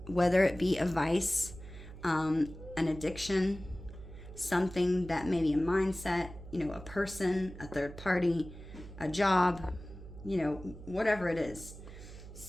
Whether it be a vice, an addiction, something that may be a mindset, a person, a third party, a job, whatever it is.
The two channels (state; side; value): noise; right; hum, 15 dB below the sound